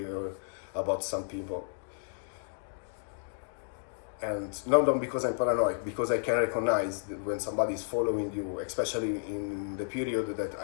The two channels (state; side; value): silent; right; digital silence